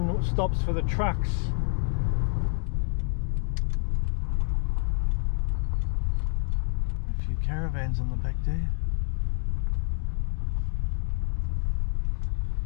stops for the trucks. A few caravans on the back there.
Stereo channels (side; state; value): right; silent; 60 dB below the other